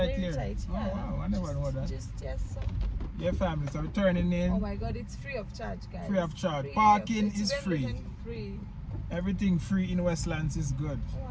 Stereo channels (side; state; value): both; identical; correlation 1.00